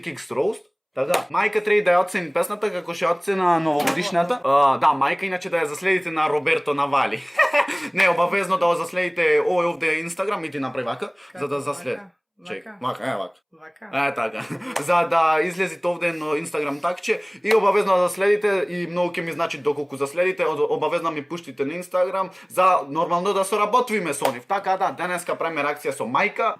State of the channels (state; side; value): identical; both; correlation 1.00